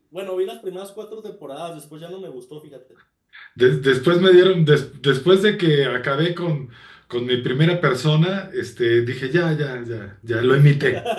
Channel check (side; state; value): both; identical; correlation 1.00